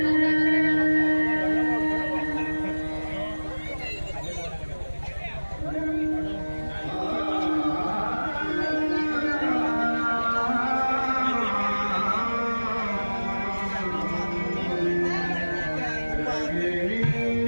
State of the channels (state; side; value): inverted; both; correlation -1.00